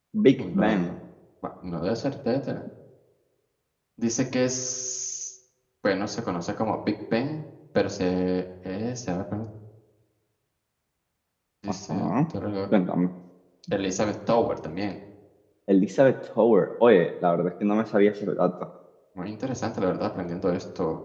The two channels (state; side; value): identical; both; correlation 1.00